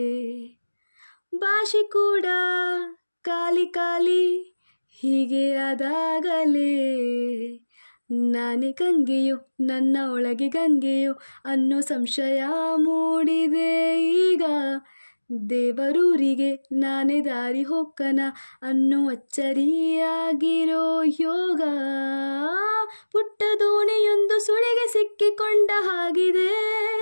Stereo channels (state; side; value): inverted; both; correlation -1.00